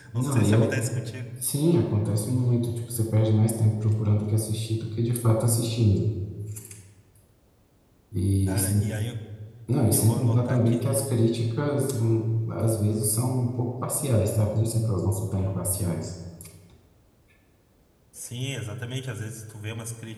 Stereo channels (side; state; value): both; identical; correlation 1.00